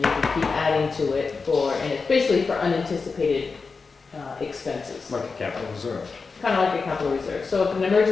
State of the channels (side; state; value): right; quieter; 4.6 dB